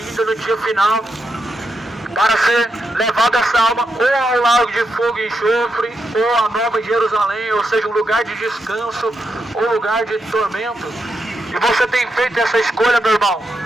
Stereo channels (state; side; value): normal; both; correlation 0.84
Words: no dia final, para ser levado essa alma ou ao lago de fogo e enxofre, ou a Nova Jerusalém, ou seja, um lugar de descanso, ou lugar de tormento. E você tem feito essa escolha, meu irmão.